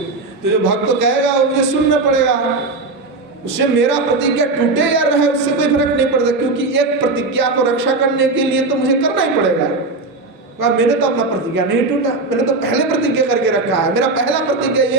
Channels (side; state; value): left; quieter; 3.4 dB